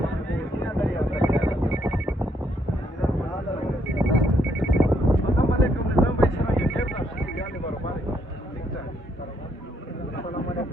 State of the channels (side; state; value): both; normal; correlation 0.73